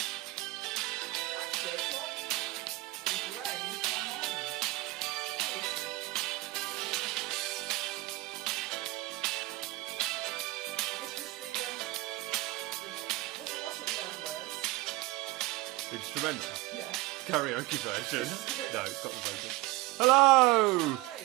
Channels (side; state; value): left; quieter; 20.4 dB